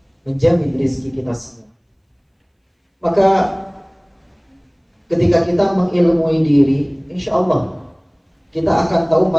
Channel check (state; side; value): identical; both; correlation 1.00